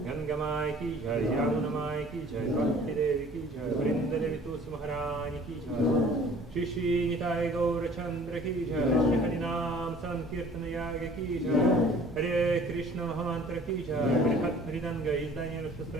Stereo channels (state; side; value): normal; both; correlation 0.51